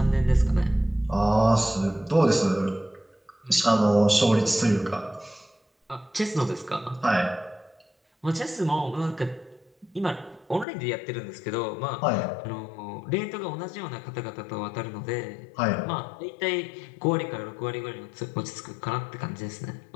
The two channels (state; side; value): drops out; right; at 10.7 s